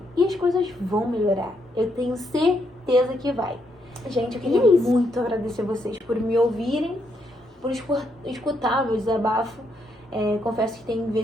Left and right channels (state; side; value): normal; both; correlation 0.77